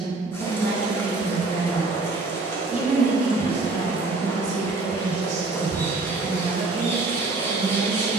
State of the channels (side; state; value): left; quieter; 3.4 dB